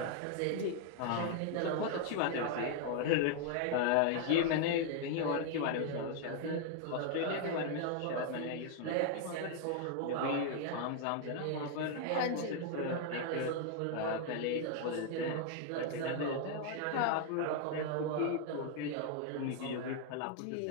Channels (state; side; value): different; both; correlation 0.00